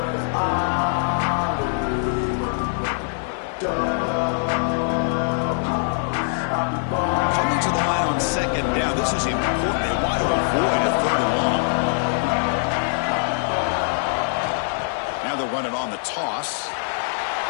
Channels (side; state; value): right; silent; digital silence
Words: This is important. They want to avoid a 3rd and long. Now they'll run it on the toss.